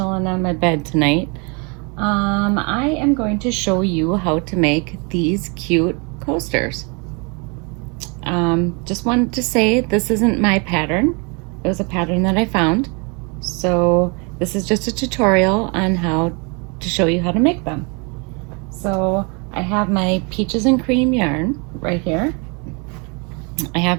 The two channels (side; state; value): left; quieter; 32.3 dB